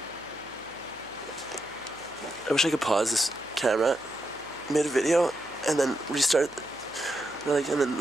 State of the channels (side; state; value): right; noise; hum, 26 dB below the sound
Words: I wish I could pause this camera mid video and then restart, and